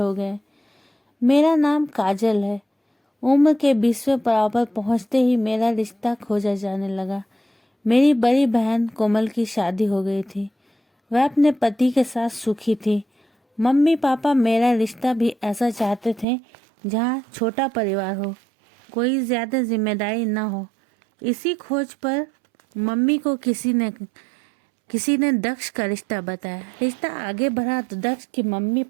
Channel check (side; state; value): left; drops out; at 16.2 s